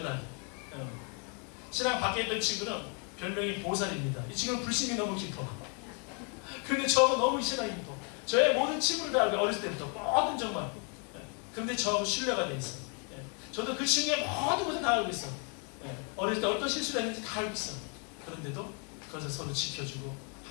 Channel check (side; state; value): right; quieter; 37.9 dB